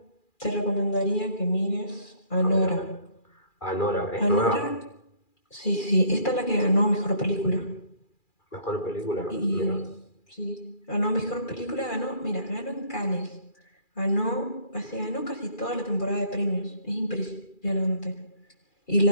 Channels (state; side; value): late; right; 2.4 ms